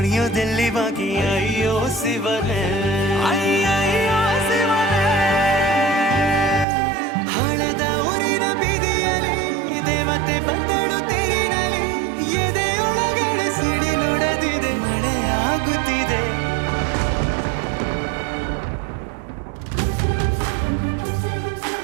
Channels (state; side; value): drops out; left; at 6.7 s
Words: ಬಾಕಿ ಅಯ್ಯೋ ಶಿವನೇ ಅಯ್ಯಯ್ಯೋ ಶಿವನೇ ಹಳದ ಊರಿನ ಬೀದಿಯಲ್ಲಿ ದೇವತೆ ಬಂದಳು ತೇರಿನಲ್ಲಿ ಎದೆಯೊಳಗಡೆ ಸಿಡಿ ನೋಡದಿದೆ ಮಳೆ ಆಗುತ್ತಿದೆ